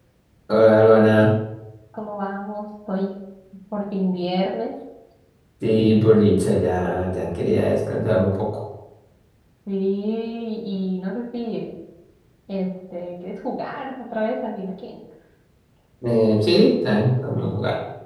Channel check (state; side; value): identical; both; correlation 1.00